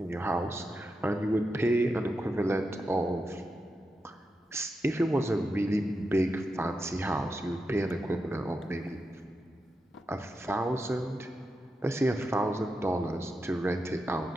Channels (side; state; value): both; normal; correlation 0.87